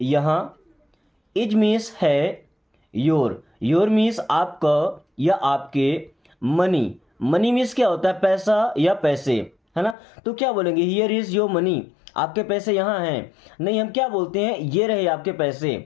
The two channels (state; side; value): drops out; right; at 10.0 s